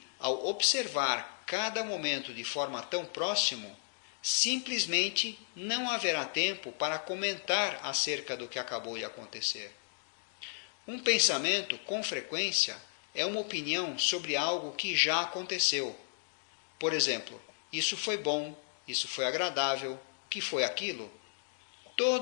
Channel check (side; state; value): right; silent; digital silence